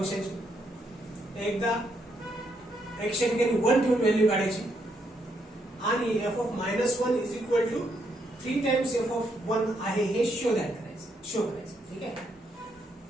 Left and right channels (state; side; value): normal; both; correlation 0.76